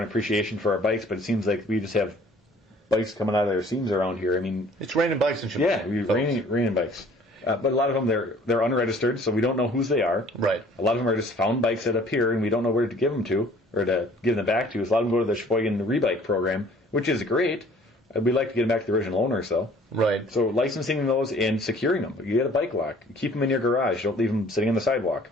appreciation for our bikes, but it seems like we just have bikes coming out of their seams around here. I mean... It's raining bikes in Sheboygan. Yeah, raining bikes. But a lot of them, they're unregistered, so we don't know whose they are. Right. A lot of them are just found bikes that appear, and we don't know where to give them to, or to give them back to. So a lot of them go to the Sheboygan Rebike program, which is great. We'd like to get them back to the original owners, though. Right. So licensing those and securing them. You get a bike lock. Keep them in your garage. Don't leave them sitting on the sidewalk.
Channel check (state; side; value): normal; both; correlation 0.54